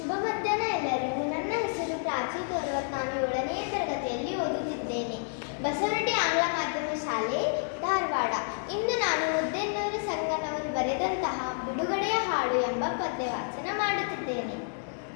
ಮಧ್ಯಾಹ್ನ ಎಲ್ಲರಿಗೂ. ನನ್ನ ಹೆಸರು ಪ್ರಾಚಿ ತೋರ್ವತ್. ನಾನು 7ನೇ ತರಗತಿಯಲ್ಲಿ ಓದುತ್ತಿದ್ದೇನೆ. ಬಸವನಹಳ್ಳಿ ಆಂಗ್ಲ ಮಾಧ್ಯಮ ಶಾಲೆ, ಧಾರವಾಡ. ಇಂದು ನಾನು ಮುದ್ದೆನ್ನೂರು ಸಂಗನವರು ಬರೆದಂತಹ ಬಿಡುಗಡೆಯ ಹಾಡು ಎಂಬ ಪದ್ಯವಾಚನ ಮಾಡುತ್ತಿದ್ದೇನೆ.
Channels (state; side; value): silent; right; 58 dB below the other